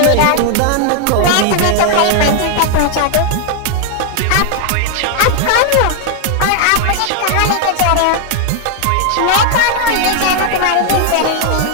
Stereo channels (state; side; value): different; both; correlation 0.00